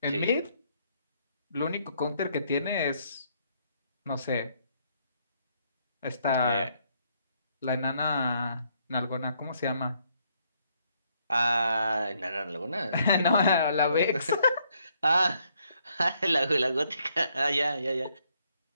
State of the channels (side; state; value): both; inverted; correlation -0.71